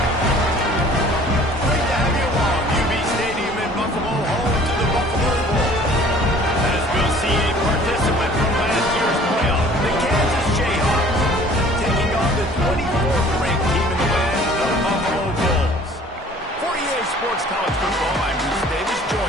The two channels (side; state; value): both; normal; correlation 0.51